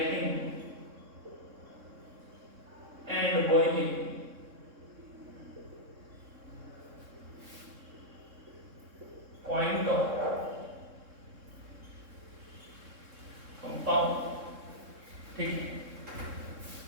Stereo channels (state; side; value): late; left; 3.6 ms